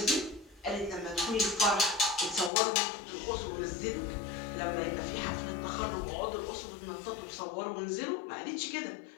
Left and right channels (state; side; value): drops out; right; at 2.5 s